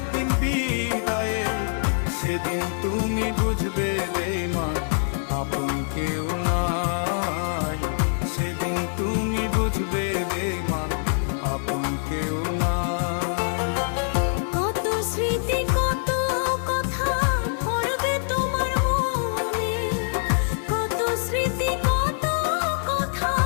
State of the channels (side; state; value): right; silent; digital silence